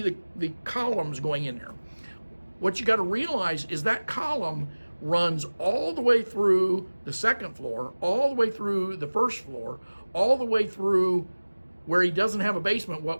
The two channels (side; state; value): both; inverted; correlation -1.00